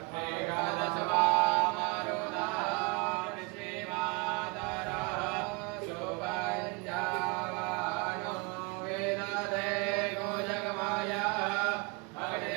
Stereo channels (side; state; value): left; quieter; 29.4 dB